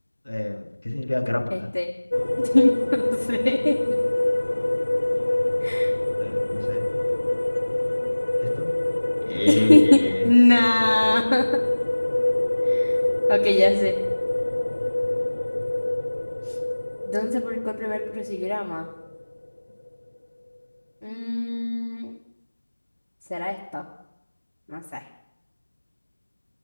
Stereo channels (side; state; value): both; inverted; correlation -1.00